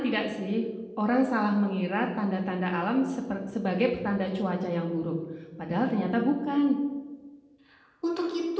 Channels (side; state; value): both; identical; correlation 1.00